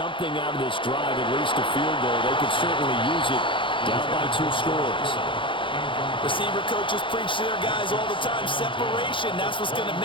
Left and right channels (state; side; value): late; right; 0.24 ms